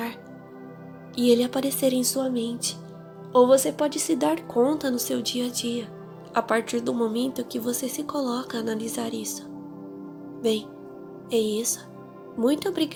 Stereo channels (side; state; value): both; identical; correlation 1.00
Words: e ele aparecer em sua mente, ou você pode se dar conta no seu dia a dia, a partir do momento que você se coloca a analisar isso. Bem, é isso. Muito